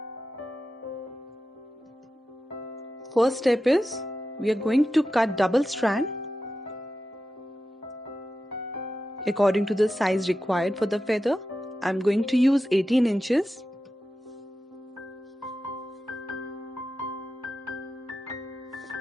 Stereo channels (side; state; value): both; normal; correlation 0.91